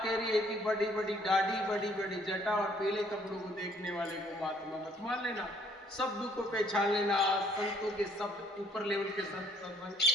रही है कि बड़ी बड़ी दाढ़ी, बड़ी बड़ी जटा और पीले कपड़ों को देखने वाले को महात्मा मत मान लेना। शब्द को पहचान लेना। संतों के शब्द ऊपर लेवल के संत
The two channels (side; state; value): both; normal; correlation 0.62